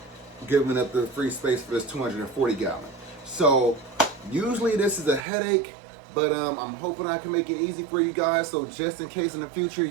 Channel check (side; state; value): left; drops out; at 5.2 s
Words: giving up the free space for this 240 gallon. So usually this is a headache, but I'm hoping I can make it easy for you guys. So just in case in the future